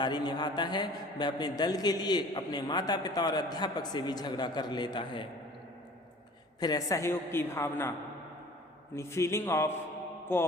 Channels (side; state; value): both; normal; correlation 0.47